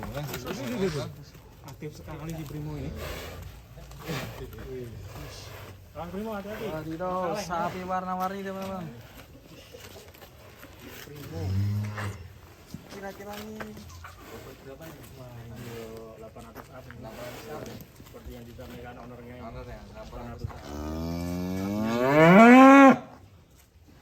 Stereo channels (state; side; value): identical; both; correlation 1.00